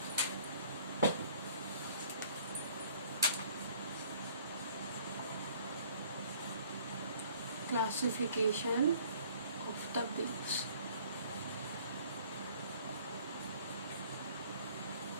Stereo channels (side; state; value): both; inverted; correlation -0.55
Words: Classification of the bills.